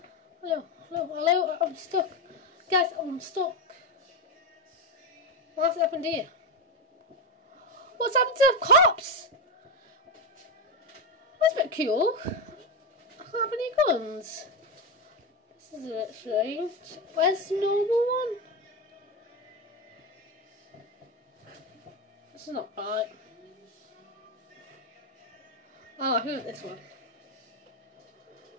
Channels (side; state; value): both; normal; correlation 0.10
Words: Hello, I'm stuck. Guys, I'm stuck. What's happened here? What's happened to the cops? That's a bit cool. I can't have any guns. This is a bit strange. Where's the normal one? This is not right. Oh, I think this one.